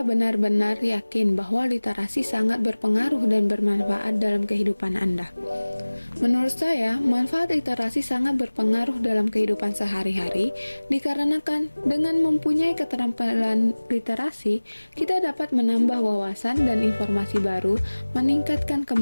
yakin bahwa literasi sangat berpengaruh dan bermanfaat dalam kehidupan Anda? Menurut saya, manfaat literasi sangat berpengaruh dalam kehidupan sehari-hari dikarenakan dengan mempunyai keterampilan literasi, kita dapat menambah wawasan dan informasi baru, meningkatkan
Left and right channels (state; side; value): inverted; both; correlation -1.00